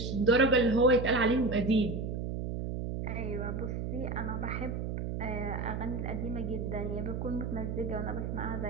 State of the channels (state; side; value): noise; right; hum, 3 dB below the sound